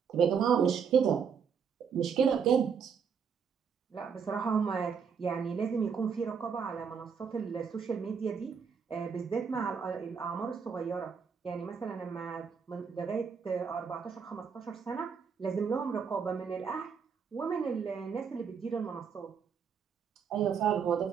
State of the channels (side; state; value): left; quieter; 6.6 dB